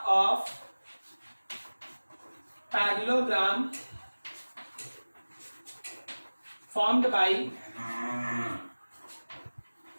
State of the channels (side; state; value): both; inverted; correlation -1.00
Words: of parallelogram formed by